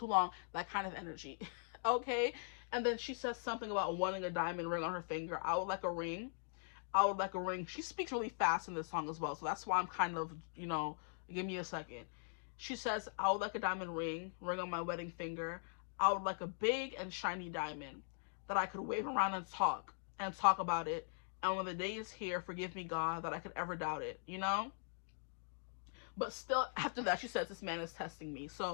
long. That kind of energy. Okay? And then she says something about wanting a diamond ring on her finger. I would like a ring. I would like a ring. She speaks really fast in this song as well. So that's why I'm kind of, you know, give me a second. She says, I would like a diamond ring on my wedding finger. I would like a big and shiny diamond that I could wave around and talk about it. And when the day is here, forgive me, God, that I could ever doubt it, you know? But still, after that, she says, this man is testing me.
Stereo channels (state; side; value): silent; right; digital silence